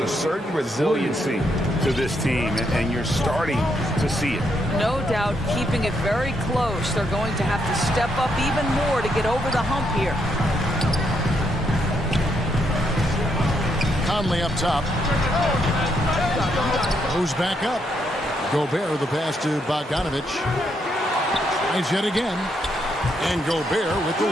certain resiliency to this team, and you're starting to see it. No doubt keeping it very close. They're going to have to step up even more to get over the hump here. Conley up top. Goes back up. Gobert, the pass to Bogdanovich. Tries yet again. And Gobert with the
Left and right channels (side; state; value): both; normal; correlation 0.77